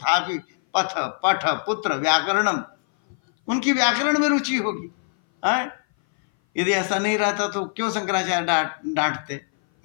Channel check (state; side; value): silent; right; 58 dB below the other